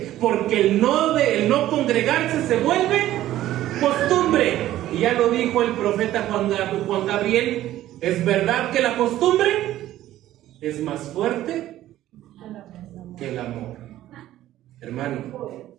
porque el no congregarse se vuelve costumbre. Y ya lo dijo el profeta Juan Gabriel: es verdad que la costumbre es más fuerte que el amor. Hermano,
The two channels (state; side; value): quieter; left; 13.9 dB